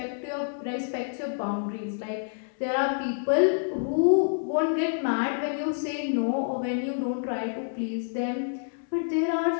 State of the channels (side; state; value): right; silent; 60 dB below the other